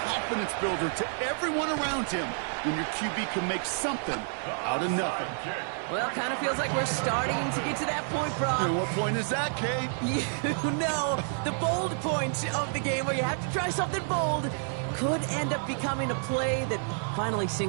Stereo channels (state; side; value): silent; left; 58 dB below the other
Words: confidence builder to everyone around him when your QB can make something out of nothing. Well, kind of feels like we're starting to get to that point, Brock. And what point is that, Kate? You know, the bold point of the game where you have to try something bold could end up becoming a play that finally